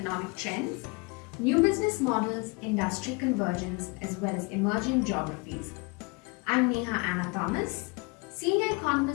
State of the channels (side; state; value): right; quieter; 28.7 dB